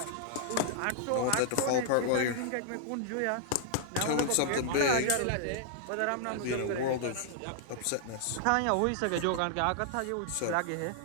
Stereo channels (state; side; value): different; both; correlation -0.01